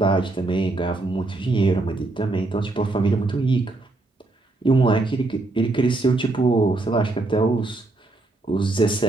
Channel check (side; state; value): left; quieter; 3.1 dB